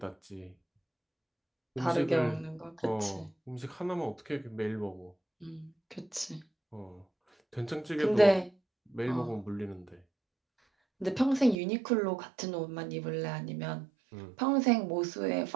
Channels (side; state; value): left; drops out; at 11.6 s